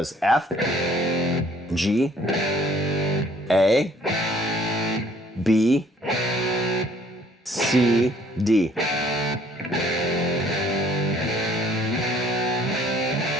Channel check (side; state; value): both; normal; correlation 0.60